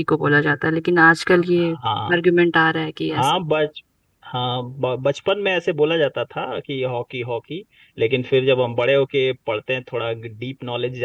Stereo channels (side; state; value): both; identical; correlation 1.00